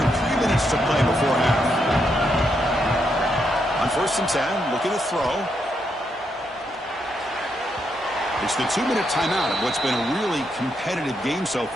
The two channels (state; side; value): normal; both; correlation 0.79